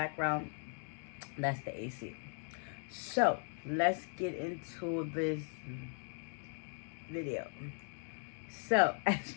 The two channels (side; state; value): right; silent; 52 dB below the other